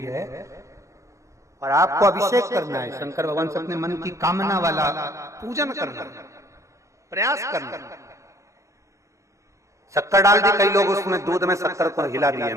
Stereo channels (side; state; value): left; late; 0.15 ms